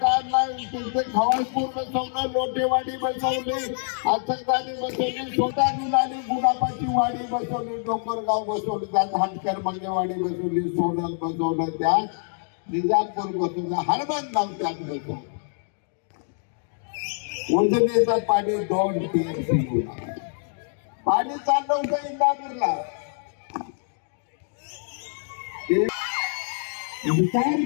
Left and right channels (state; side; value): silent; right; 60 dB below the other